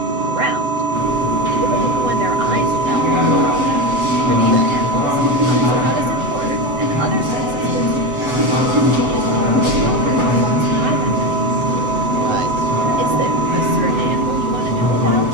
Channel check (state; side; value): late; left; 8.0 ms